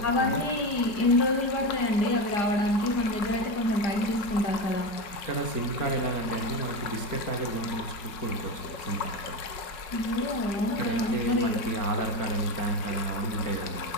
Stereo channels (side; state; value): right; late; 5.4 ms